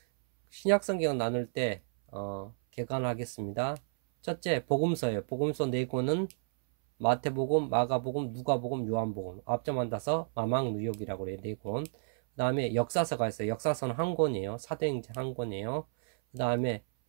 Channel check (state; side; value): silent; left; 57 dB below the other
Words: 신약 성경 나눌 때 개관하겠습니다. 첫째, 복음서예요. 복음서 4권은 마태복음, 마가복음, 누가복음, 요한복음, 앞점 따서 마망누욕이라고 그래요. 4권. 그 다음에 역사서가 있어요. 역사서는 한 권이에요. 사도행전 한 권이에요. 그 다음에